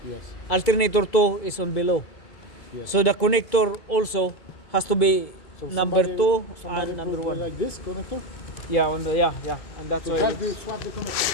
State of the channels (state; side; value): late; right; 2.2 ms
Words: Yes. Alternator 2 is on below. Yes. So the connector also has to be So number 2 somebody and number put 1. like this connector? Yeah, and that's why. Just swap the